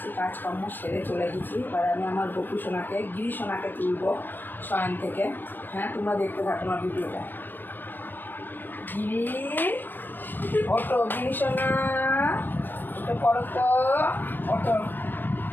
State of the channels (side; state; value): right; late; 0.092 ms